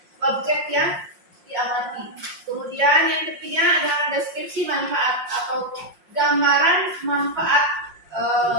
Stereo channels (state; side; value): late; left; 5.6 ms